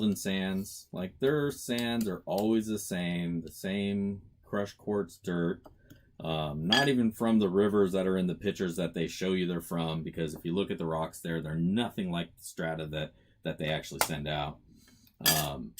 Sands, like their sands are always the same crushed quartz dirt. Not even from the rivers that are in the pictures that they show you they're from, because if you look at the rocks there, they're nothing like the strata that they actually send out.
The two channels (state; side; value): identical; both; correlation 1.00